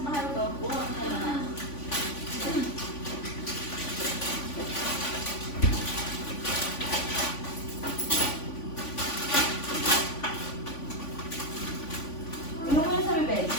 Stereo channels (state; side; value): late; right; 3.5 ms